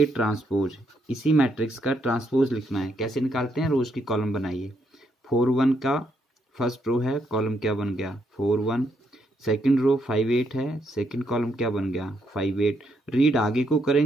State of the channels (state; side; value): normal; both; correlation 0.76